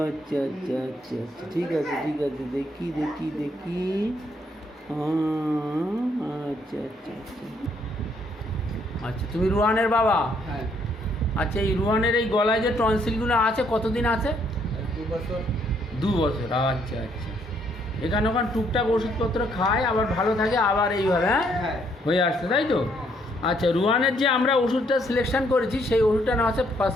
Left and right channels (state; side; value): normal; both; correlation 0.69